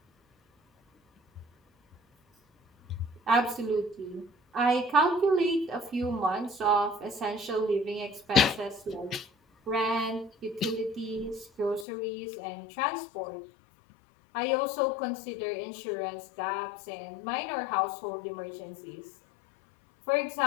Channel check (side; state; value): right; drops out; at 11.9 s